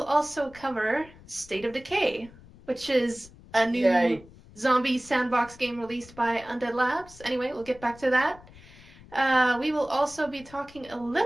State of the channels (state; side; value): noise; left; rumble, 22 dB below the sound